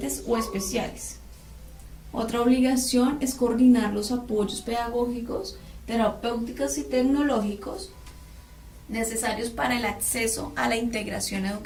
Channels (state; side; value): identical; both; correlation 1.00